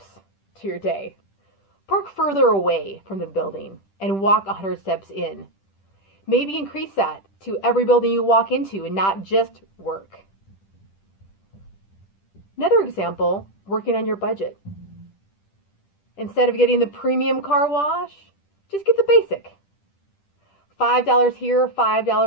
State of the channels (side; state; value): right; late; 10 ms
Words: to your day? Park further away from the building and walk 100 steps in. Maybe increase that to every building you walk into and not just work. Another example, working on your budget. Instead of getting the premium car wash, just get the basic. $5 here,